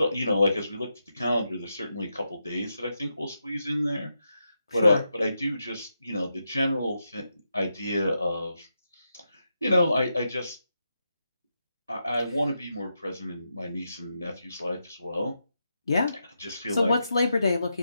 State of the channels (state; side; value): inverted; both; correlation -0.86